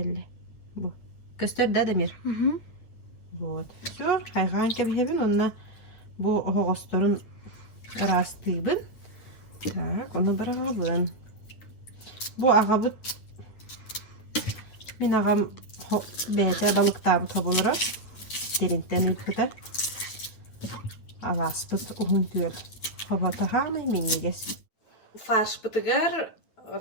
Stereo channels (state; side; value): late; right; 9.3 ms